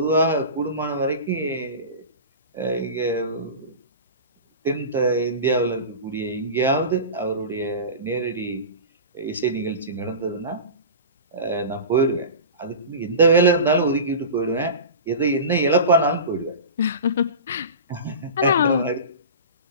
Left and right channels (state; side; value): inverted; both; correlation -0.30